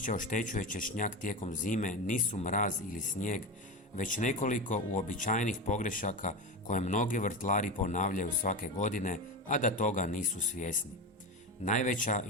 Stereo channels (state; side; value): normal; both; correlation 0.20